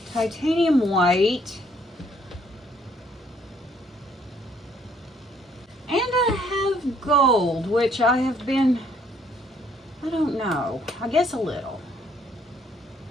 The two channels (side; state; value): both; normal; correlation 0.65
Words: titanium white, and I have gold, which I have been, I don't know, I guess a little.